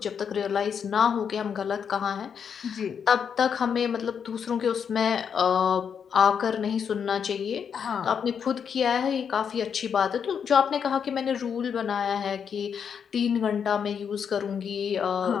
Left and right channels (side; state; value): right; quieter; 7.2 dB